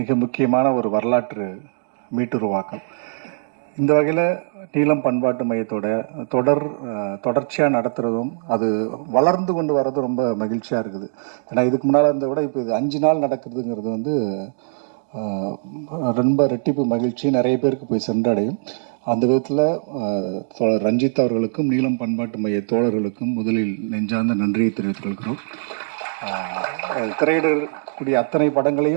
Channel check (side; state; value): left; silent; digital silence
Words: முக்கியமான ஒரு வரலாற்று மீட்டுருவாக்கம். இந்த வகையில் நீலம் பண்பாட்டு மையத்தோட தொடர்ச்சியாக நடத்துகிறதும் அது வளர்ந்து கொண்டு வர்றதும் ரொம்ப மகிழ்ச்சியாக இருக்குது. ஏன்னா இதுக்கு முன்னால் இருந்த விட இப்போ இது 5 நாள் நடக்கிறதுங்கிறது வந்து ரொம்ப ரெட்டிப்பு மகிழ்ச்சி நிறைய பேருக்கு போய் சென்றடையும். அந்த விதத்தில் தோழர் ரஞ்சித் அவர்களுக்கும் நீலம் பண்பாட்டு மைய தோழர்களுக்கும் முதலில் நெஞ்சார்ந்த நன்றியை தெரிவித்துக் கொள்கிறோம். திரையிடக்கூடிய அத்தனை